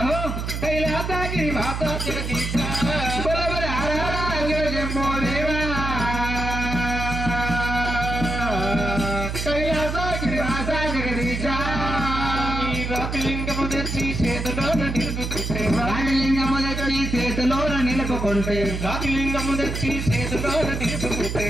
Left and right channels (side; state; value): right; noise; hum, 4 dB below the sound